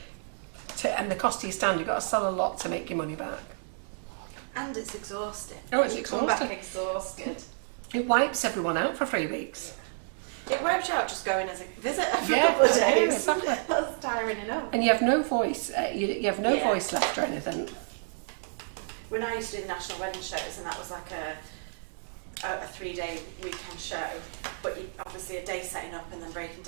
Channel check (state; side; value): silent; left; digital silence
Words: and the cost of your stand, you've got to sell a lot to make your money back. And it's exhausting. Oh, it's you come back exhausted. It wipes everyone out for 3 weeks. Yeah. It wipes you out just going as a visitor for a couple of days. Exactly. That's tiring enough. And you have no voice. You have no voice left or anything. When I used to do the national wedding shows, and that was like a 3-day weekend show, but obviously a day setting up and then breaking